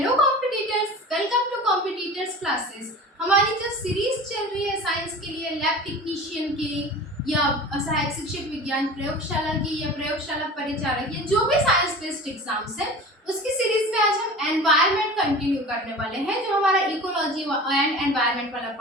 competitors, welcome to competitors classes. हमारी जो series चल रही है साइंस के लिए, लैब टेक्नीशियन की या सहायक शिक्षक विज्ञान प्रयोगशाला की या प्रयोगशाला परिचालक या जो भी साइंस बेस्ड एग्जाम्स है, उसकी सीरीज में आज हम एनवायरनमेंट कंटिन्यू करने वाले हैं। जो हमारा इकोलॉजी एंड एनवायरनमेंट वाला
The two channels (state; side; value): normal; both; correlation 0.37